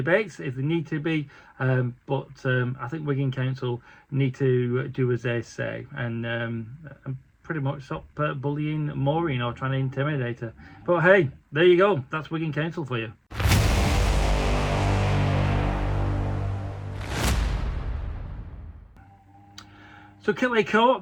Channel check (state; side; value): identical; both; correlation 1.00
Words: if they need to be, but I think Wigan Council need to do as they say, and pretty much stop bullying Maureen or trying to intimidate her. But hey, there you go, that's Wigan Council for you. So Kilhey